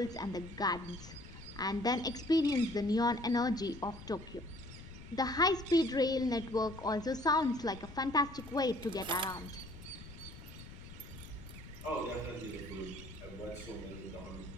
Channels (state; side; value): noise; left; rumble, 15 dB below the sound